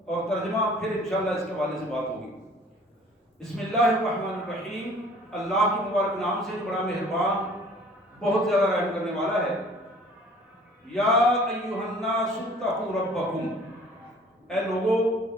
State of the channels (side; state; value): both; normal; correlation 0.51